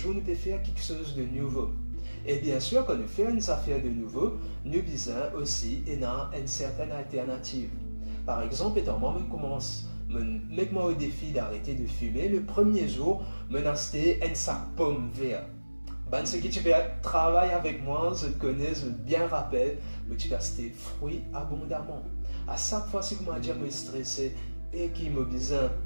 nous peut faire quelque chose de nouveau. Et bien sûr, quand nous faisons une affaire de nouveau, nous besoin aussi une certaine alternative. Par exemple, étant moi, je commence mettre-moi au défi d'arrêter de fumer. Le premier jour, je vais acheter un sac pomme vert. Ben, ce qui tu peux travailler avec moi, je te connais, je bien rappelle, mais tu vas acheter fruits abondamment. À chaque fois que je suis stressé et qu'il me besoin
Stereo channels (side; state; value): both; inverted; correlation -1.00